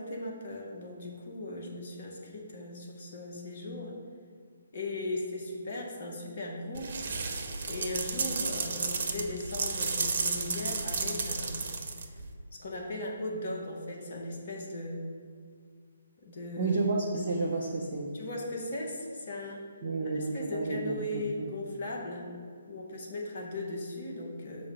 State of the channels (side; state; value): both; inverted; correlation -0.69